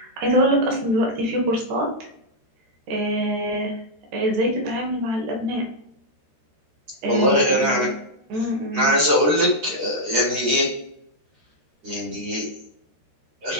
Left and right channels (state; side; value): late; left; 13 ms